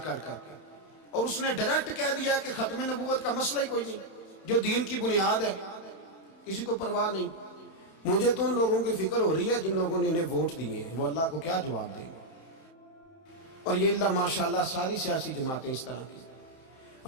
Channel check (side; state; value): right; late; 31 ms